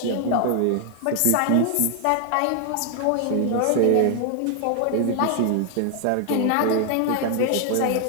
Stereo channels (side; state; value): both; different; correlation 0.00